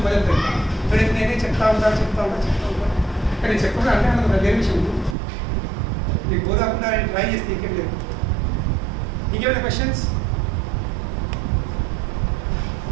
బయలుదేరు. కానీ నేనే చెప్తా ఉంటా కానీ చెప్పకుండా అంటే అన్నది వేరే విషయం. మీకు పోదాకుండా ఆయన ట్రై చేస్తే ఇంకేం లేదు. ఇంకేమైనా క్వశ్చన్స్?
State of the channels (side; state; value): left; drops out; at 5.2 s